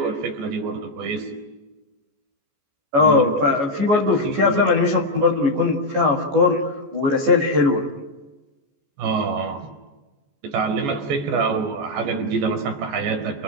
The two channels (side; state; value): left; late; 14 ms